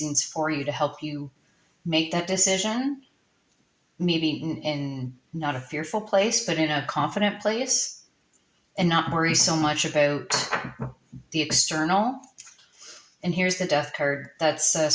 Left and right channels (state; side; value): identical; both; correlation 1.00